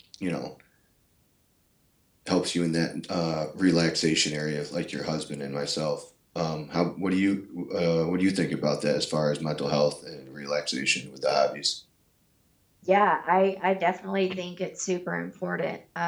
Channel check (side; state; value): both; identical; correlation 1.00